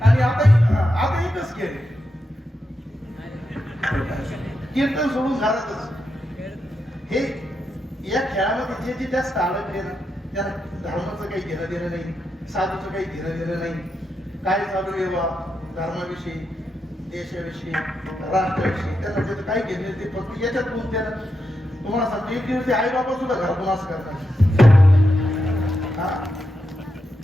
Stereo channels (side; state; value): both; normal; correlation 0.86